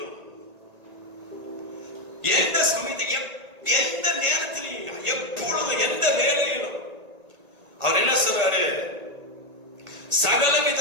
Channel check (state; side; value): late; left; 1.5 ms